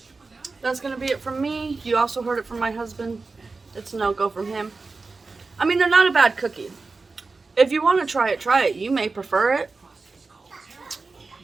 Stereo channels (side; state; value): left; quieter; 4.0 dB